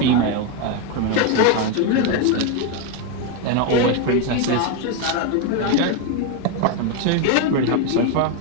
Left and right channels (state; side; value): different; both; correlation 0.02